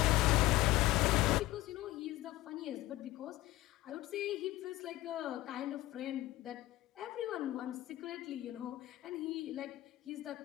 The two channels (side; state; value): right; quieter; 17.0 dB